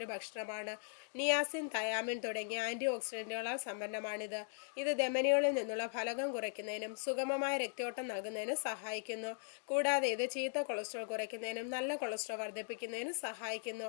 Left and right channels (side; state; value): right; silent; digital silence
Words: ഭക്ഷണമാണ്. നിയാസിൻ, തയാമിൻ തുടങ്ങിയ ആന്റി ഓക്സിഡന്റുകളാൽ സമ്പന്നമാണിത്. ഇത് ധമനികളിൽ നിന്നുള്ള ഫലകം കുറയ്ക്കുന്നതിനും സുഗമമായ രക്തയോട്ടം നൽകുന്നതിനും സഹായിക്കുന്നു. കൂടാതെ ഇത് ചീത്ത കൊളസ്ട്രോൾ കുറയ്ക്കുന്നതിനും നല്ല കൊളസ്ട്രോൾ വർദ്ധിപ്പിക്കുന്നതിനും സഹായിക്കുന്നു.